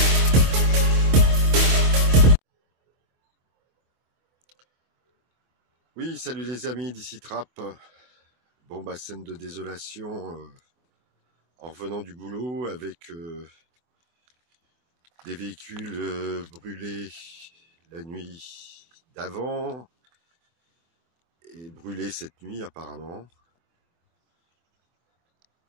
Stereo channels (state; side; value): late; left; 25 ms